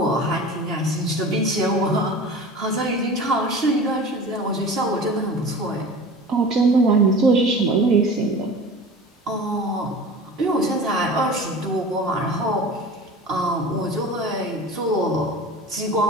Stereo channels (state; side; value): normal; both; correlation 0.37